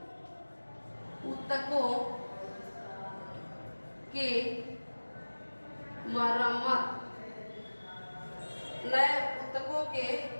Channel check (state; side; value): inverted; both; correlation -1.00